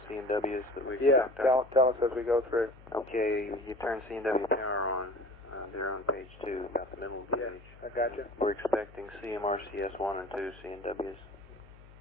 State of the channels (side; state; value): left; noise; hum, 21 dB below the sound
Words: C&Ws that we Yeah, tell us as we go through. Okay, you turn C&W power on. They're on page 2, about the middle of the page. I got you. We're expecting CMRCS 1 and 2 C&Ws.